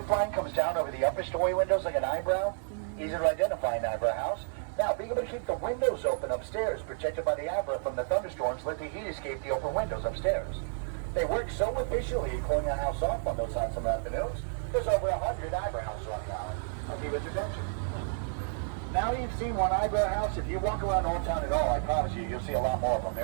line comes down over the upper story windows like an eyebrow? Easy to identify an eyebrow house. Now, being able to keep the windows open upstairs, protected by the eyebrow from the thunderstorms, let the heat escape the open windows upstairs. They work so efficiently in cooling our house off on those hot summer afternoons, there's over 100 eyebrow houses on the island. I'll give it attention. Now you've seen one eyebrow house. If you walk around Old Town at all, I promise you'll see a lot more of them.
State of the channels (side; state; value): left; silent; 57 dB below the other